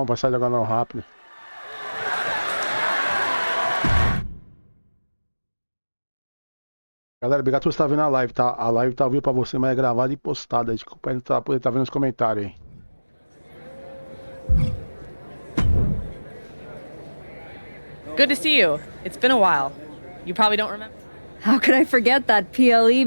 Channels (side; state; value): both; inverted; correlation -1.00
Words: pra sair jogando rápido. Galera, obrigado por você estar vendo a live, tá? A live tá ao vivo pra você, mas é gravada e postada. Desculpa aí não poder estar vendo os comentários aí. Good to see you. It's been a while. You probably don't remember. How could I forget that PLE